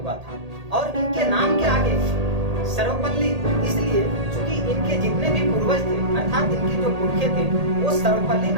हुआ था। और इनके नाम के आगे सर्वपल्ली इसलिए क्योंकि इनके जितने भी पूर्वज थे अर्थात इनके जो पुरखे थे वो सर्वपल्ली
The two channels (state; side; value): late; left; 1.8 ms